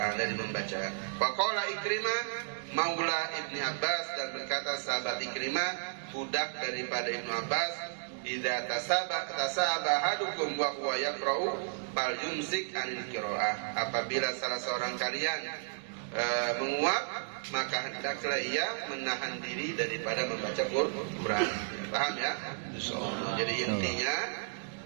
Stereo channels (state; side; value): silent; left; digital silence